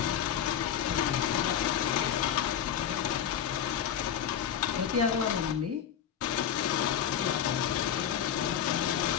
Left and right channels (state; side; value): quieter; right; 9.2 dB